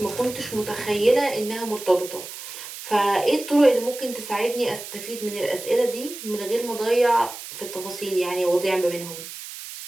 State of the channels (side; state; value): right; noise; hiss, 11 dB below the sound